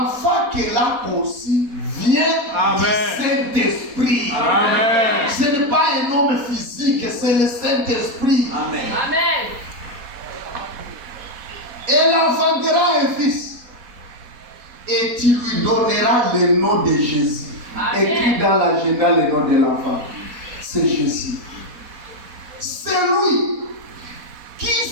qu'elle a conçu vient Amen. du Saint-Esprit. Amen. Ce n'est pas un homme physique, c'est le Saint-Esprit. Amen. Amen. Elle enfantera un fils. Et tu lui donneras le nom de Jésus. Amen. Écrit dans l'agenda le nom de l'enfant. C'est Jésus. C'est lui qui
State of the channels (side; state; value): left; late; 4.2 ms